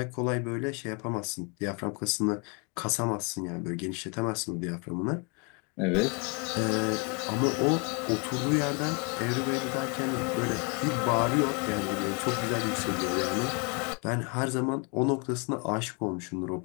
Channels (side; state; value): right; quieter; 33.8 dB